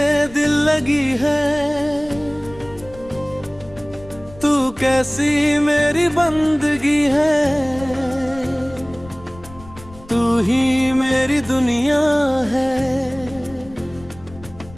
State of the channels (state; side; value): noise; left; rumble, 19 dB below the sound